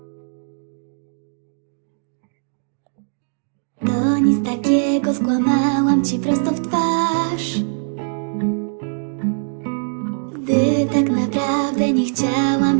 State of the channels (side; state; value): left; silent; digital silence